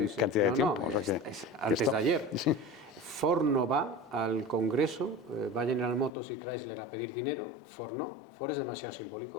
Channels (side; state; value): right; drops out; at 6.1 s